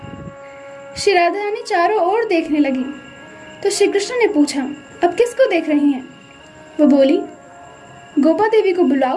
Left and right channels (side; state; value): both; identical; correlation 1.00